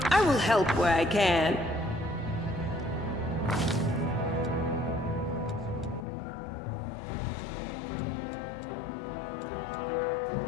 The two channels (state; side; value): drops out; right; at 6.1 s